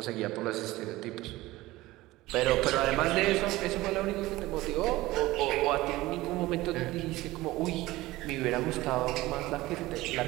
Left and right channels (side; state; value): left; quieter; 18.4 dB